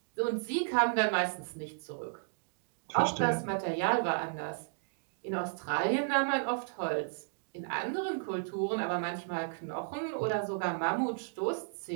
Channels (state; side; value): silent; left; digital silence